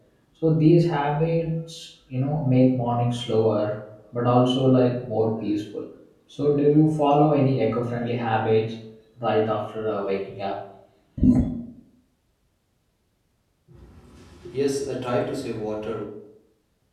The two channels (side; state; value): both; identical; correlation 1.00